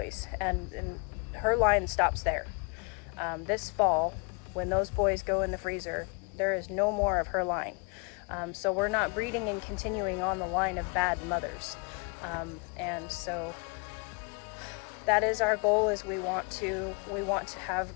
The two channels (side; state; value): right; quieter; 32.8 dB